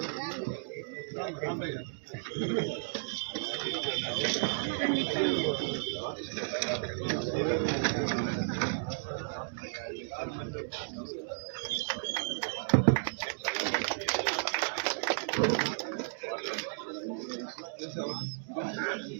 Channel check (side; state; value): left; silent; digital silence